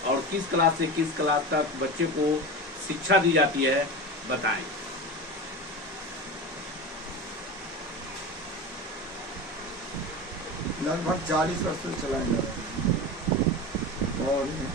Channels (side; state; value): both; normal; correlation 0.26